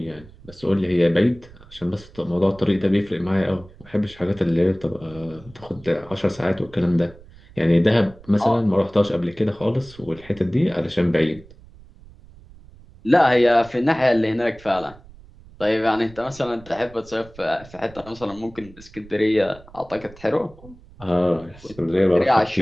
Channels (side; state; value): right; noise; rumble, 22 dB below the sound